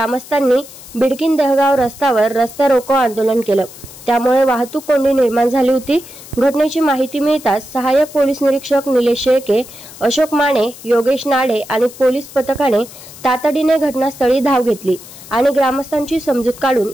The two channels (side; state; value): left; noise; hiss, 18 dB below the sound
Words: बिडकीन देहगाव रस्त्यावर रस्ता रोको आंदोलन केलं। त्यामुळे वाहतूक कोंडी निर्माण झाली होती। घटनेची माहिती मिळताच सहाय्यक पोलीस निरीक्षक निलेश शेळके, अशोक माने, योगेश नाडे आणि पोलीस पथकाने तातडीने घटनास्थळी धाव घेतली आणि ग्रामस्थांची समजूत काढून